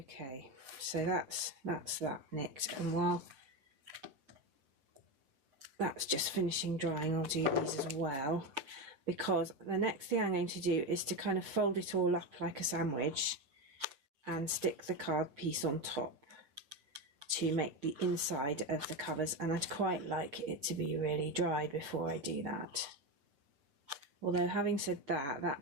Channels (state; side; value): late; left; 7.1 ms